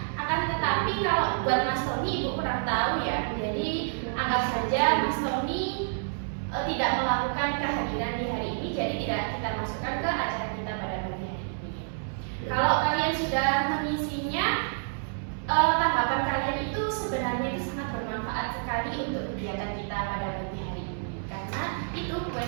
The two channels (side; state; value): left; silent; 59 dB below the other